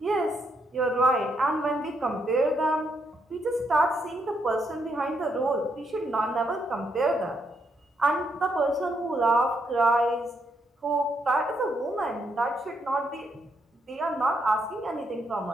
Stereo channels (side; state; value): both; normal; correlation 0.77